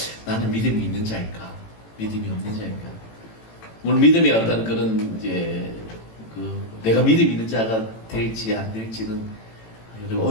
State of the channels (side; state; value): right; late; 18 ms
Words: 나는 믿음이 있는 자일까 믿음이 없는 자일까? 물론 믿음의 어떤 그런 이제 내가 믿음 있는 자가 될지 안 될지는